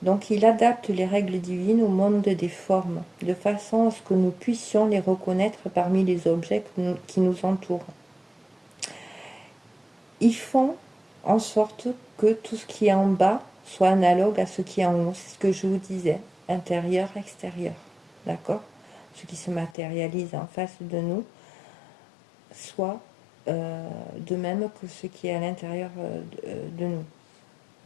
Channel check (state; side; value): drops out; right; at 19.7 s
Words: Donc il adapte les règles divines au monde des formes, de façon à ce que nous puissions les reconnaître parmi les objets qui nous entourent. Ils font en sorte que tout ce qui est en bas soit analogue à ce qui est en haut. C'est ce que je vous disais, intérieur, extérieur. D'accord? Ce qui se matérialise en face de nous soit de même que ce qui est à l'intérieur de nous.